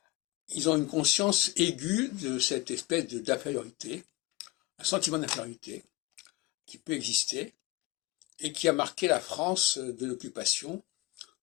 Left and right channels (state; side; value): quieter; right; 18.4 dB